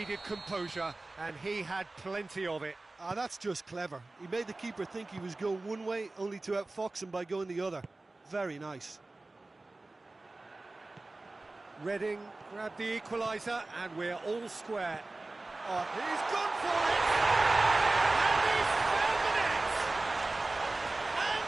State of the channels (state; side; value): quieter; left; 3.1 dB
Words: composure, and he had plenty of it. that's just clever. He made the keeper think he was going one way, only to outfox him by going the other. Very nice. Reading grabbed the equaliser, and we're all square. Oh, he's gone for it! And he's found the net! And